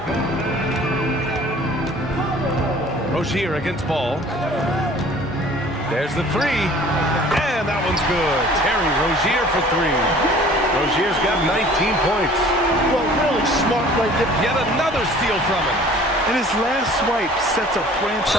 Rozier against Ball. There's the 3. And that one's good. Terry Rozier for 3. Rozier's got 19 points. Well, really smart right there. Yet another steal from him. And his last swipe sets a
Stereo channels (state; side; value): normal; both; correlation 0.50